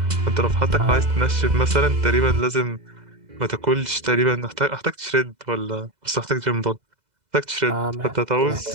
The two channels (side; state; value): left; late; 2.0 ms